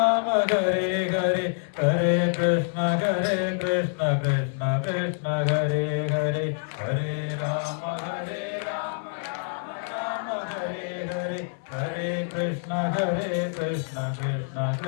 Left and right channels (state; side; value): silent; right; 58 dB below the other